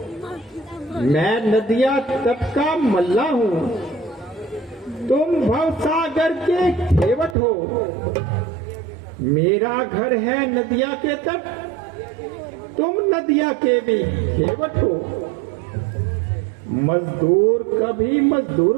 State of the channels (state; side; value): drops out; left; at 7.4 s